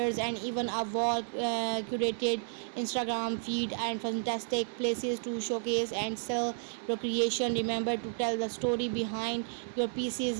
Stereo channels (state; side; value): silent; left; 56 dB below the other